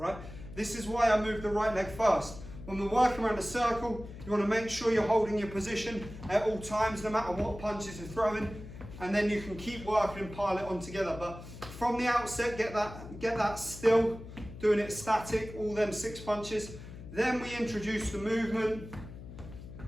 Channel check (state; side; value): noise; left; hum, 13 dB below the sound